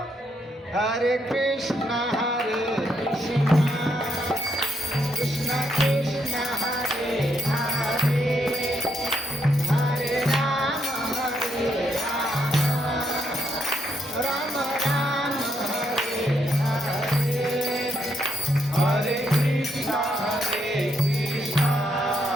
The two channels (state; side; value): normal; both; correlation 0.77